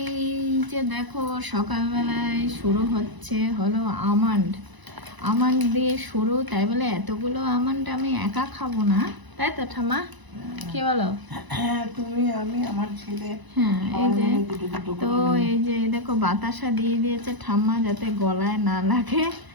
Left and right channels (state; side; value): late; left; 1.0 ms